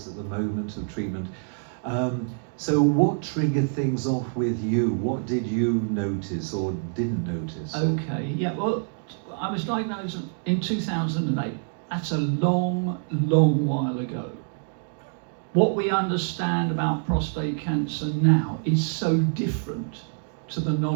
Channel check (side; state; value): left; silent; 58 dB below the other